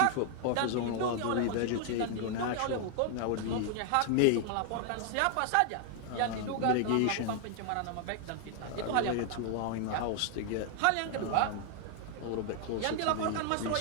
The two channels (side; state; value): both; different; correlation 0.00